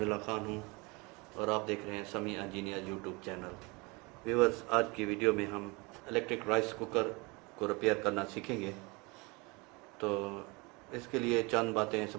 ख़ान हूँ और आप देख रहे हैं समी इंजीनियर यूट्यूब चैनल। व्यूवर्स, आज की वीडियो में हम इलेक्ट्रिक राइस कुकर को रिपेयर करना सीखेंगे। तो इसके लिए चंद बातें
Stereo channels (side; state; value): left; quieter; 26.8 dB